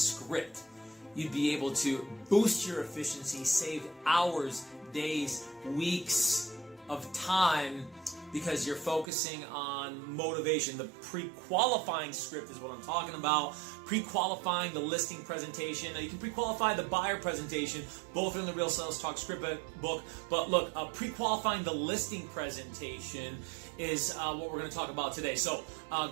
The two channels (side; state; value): left; drops out; at 9.1 s